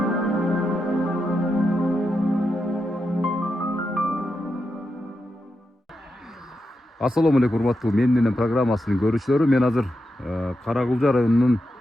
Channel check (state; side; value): normal; both; correlation 0.87